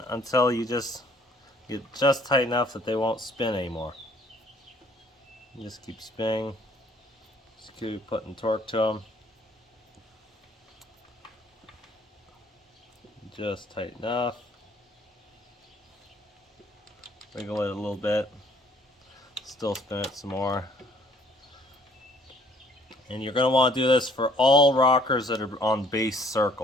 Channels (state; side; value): normal; both; correlation 0.60